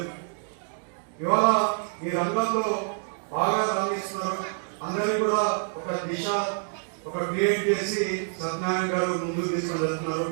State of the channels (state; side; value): silent; left; digital silence